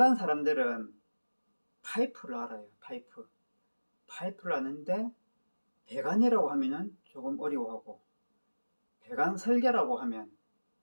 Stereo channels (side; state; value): both; inverted; correlation -1.00